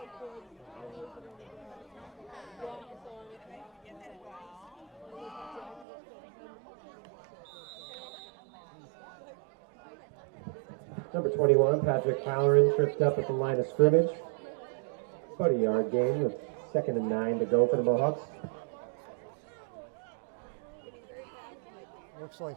Number 21, Patrick Halloran, tripped up at the line of scrimmage. About a yard gain with 2nd and 9 to go for the Mohawks. Looks like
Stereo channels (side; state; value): left; drops out; at 5.9 s